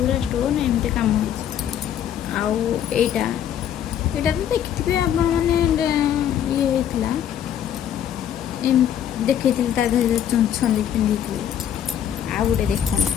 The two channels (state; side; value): quieter; right; 9.9 dB